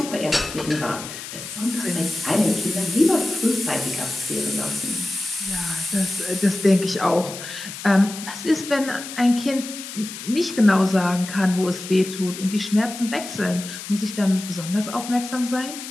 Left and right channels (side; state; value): left; noise; hiss, 10 dB below the sound